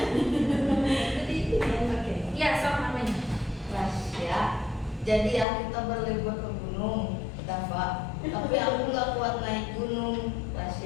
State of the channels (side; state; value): right; drops out; at 5.5 s